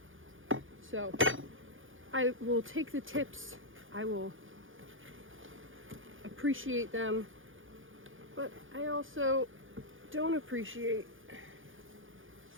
So I will take the tips, I will appreciate them, but I also don't appreciate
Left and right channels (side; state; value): left; late; 0.58 ms